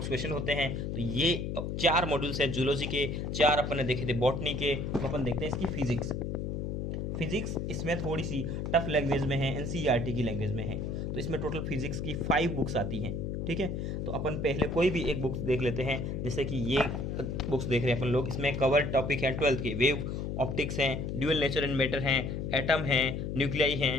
क्वेश्चन होते हैं। तो ये 4 मॉड्यूल्स हैं जूलॉजी के, 4 अपन ने देखे थे बॉटनी के। तो अपन देखते हैं इसकी फिजिक्स इसमें थोड़ी सी टफ लैंग्वेज में है, एनसीईआरटी की लैंग्वेज में है। तो इसमें टोटल फिजिक्स की 5 बुक्स आती हैं। ठीक है, तो अपन पहले कोई भी एक बुक्स देख लेते हैं, जैसे कि ये बुक्स देख रहे हैं अपन लोग। इसमें कवर टॉपिक है 12th के, वेव ऑप्टिक्स हैं, ड्यूअल नेचर एंड मैटर हैं, एटम हैं, न्यूक्लियाई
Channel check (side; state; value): left; noise; hum, 3 dB below the sound